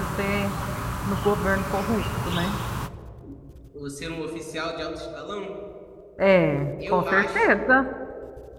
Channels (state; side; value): identical; both; correlation 1.00